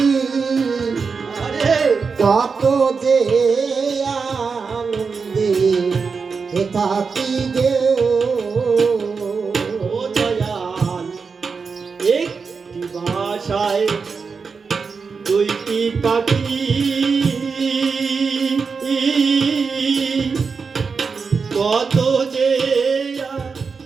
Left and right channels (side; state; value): left; quieter; 5.1 dB